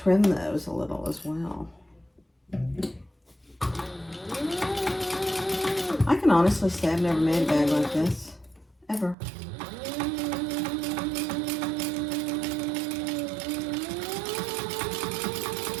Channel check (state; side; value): drops out; left; at 9.2 s